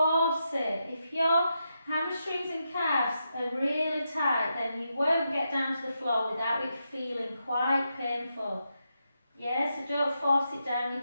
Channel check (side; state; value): both; inverted; correlation -0.85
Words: it. If your hamstrings and calves are really tight, then you won't get down to the floor without it feeling quite painful. Yeah, so don't force it down, you